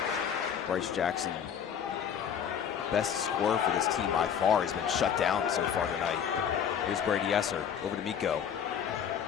Bryce Jackson, best scorer for this team by far, has been shut down so far tonight. Here's Brady Esser over to Miko.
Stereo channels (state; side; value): quieter; right; 8.2 dB